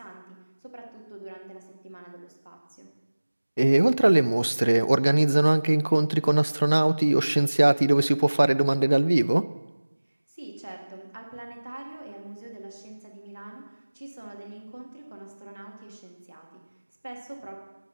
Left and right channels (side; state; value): both; inverted; correlation -1.00